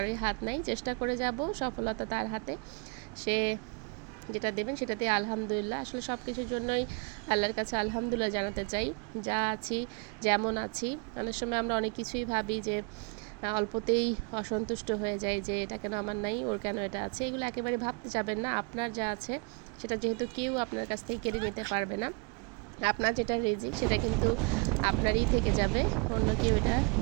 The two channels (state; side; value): quieter; left; 33.5 dB